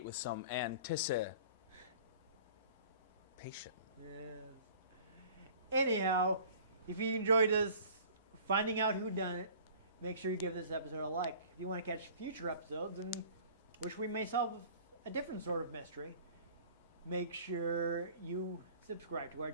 with some anticipation. Yes. Anyhow, if you enjoyed us finding out who done it, make sure you give this episode a like. If you want to catch future episodes in which we may solve a different sort of mystery, make sure you subscribe to our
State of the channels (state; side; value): inverted; both; correlation -0.48